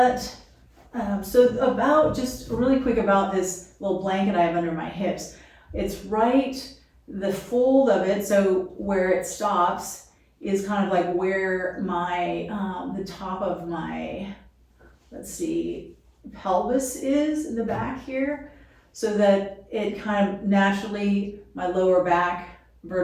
just really quick about this little blanket I have under my hips. It's the fold of it, so where it stops is kind of like where my, the top of my, pelvis is in the back here, so that it kind of naturally, my lower back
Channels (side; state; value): both; identical; correlation 1.00